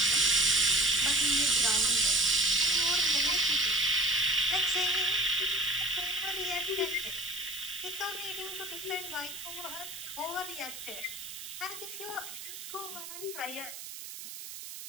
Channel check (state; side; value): noise; right; hiss, 11 dB below the sound